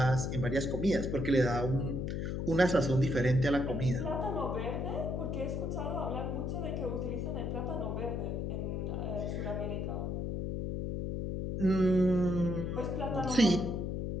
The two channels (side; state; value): left; noise; hum, 2 dB below the sound